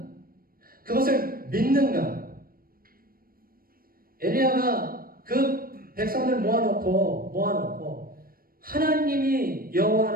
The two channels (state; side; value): late; left; 0.42 ms